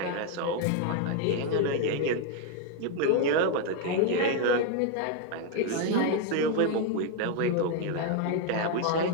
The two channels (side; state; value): both; different; correlation 0.01